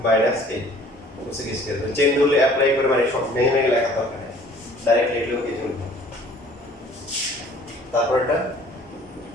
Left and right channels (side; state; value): both; normal; correlation 0.52